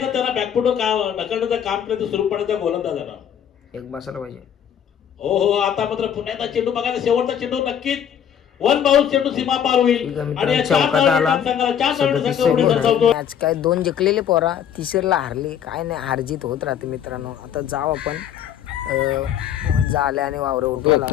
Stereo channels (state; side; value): quieter; right; 9.1 dB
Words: त्यांना बॅकफुट ढकलण्याचं काम केलं सुरू पडायचा गोलंदाजांना एक बसायला पाहिजे. हो हो, आता मात्र पुन्हा एकदा चेंडू बघायचा. शेवटचा चेंडू नक्कीच 1 बाउन्स चेंडू सीमा पार होईल आणि मॅच काय 2 जिंकलेले पोरा, तिसरीला हारली. काय नाही, हारजीत होत राहते मित्रांनो. आता जाऊ आपण झाले आणि वावरे उठवला.